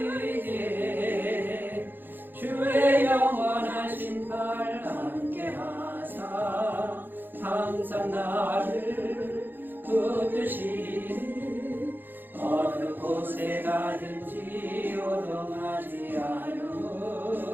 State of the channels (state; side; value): late; left; 0.094 ms